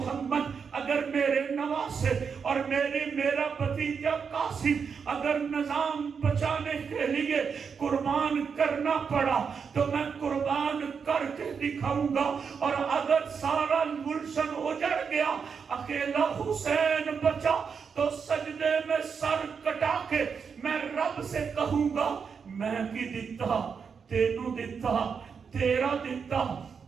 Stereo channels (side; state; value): left; quieter; 6.2 dB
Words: اگر میرے نواسے اور میرا بھتیجا قاسم اگر نظام بچانے کے لیے قربان کرنا پڑا تو میں قربان کر کے دکھاؤں گا، اور اگر سارا گلشن اجڑ گیا اکیلا حسین بچا تو سجدے میں سر کٹا کے میں رب سے کہوں گا میں کی دیتا تینوں دیتا تیرا دیتا